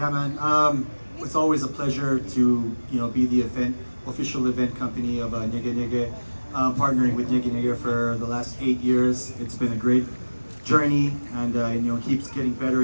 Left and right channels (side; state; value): both; inverted; correlation -1.00